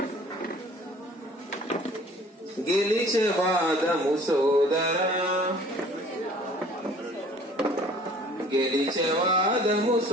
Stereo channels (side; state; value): both; normal; correlation 0.51